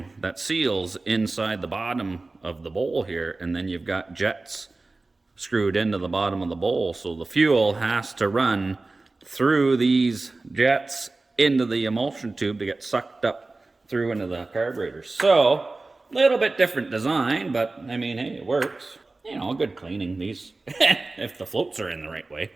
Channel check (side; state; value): left; quieter; 3.4 dB